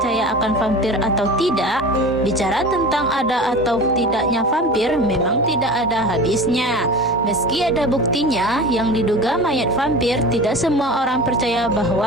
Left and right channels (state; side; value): normal; both; correlation 0.34